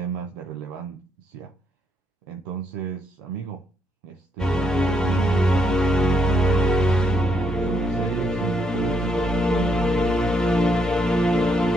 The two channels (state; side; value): normal; both; correlation 0.74